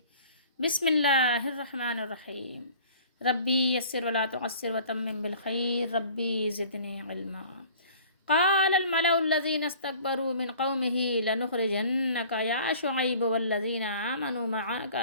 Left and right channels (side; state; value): both; inverted; correlation -0.47